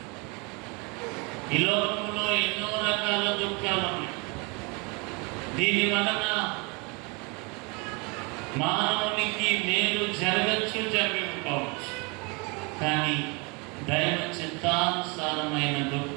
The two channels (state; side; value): quieter; left; 30.0 dB